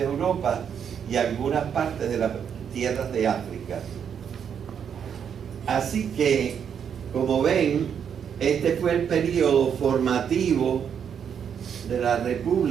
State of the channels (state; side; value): quieter; left; 7.9 dB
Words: Europa y algunas partes de las tierras de África. Así que, como ven, este fue el periodo formativo de la